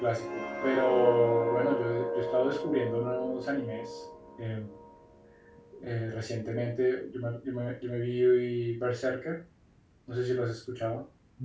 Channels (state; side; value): identical; both; correlation 1.00